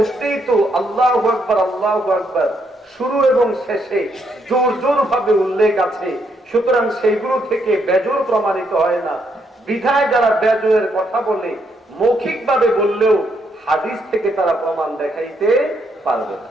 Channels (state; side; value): normal; both; correlation 0.75